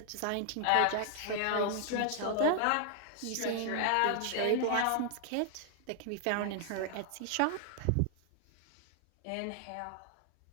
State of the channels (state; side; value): different; both; correlation 0.00